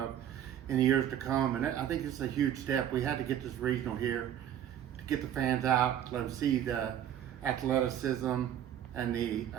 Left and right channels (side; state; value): left; quieter; 10.5 dB